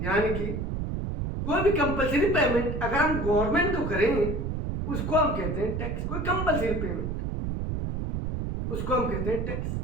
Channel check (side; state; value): right; noise; rumble, 2 dB below the sound